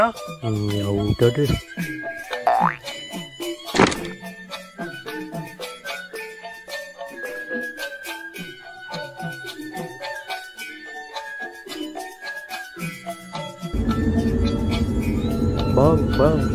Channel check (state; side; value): identical; both; correlation 1.00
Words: Ya udah deh. Bang,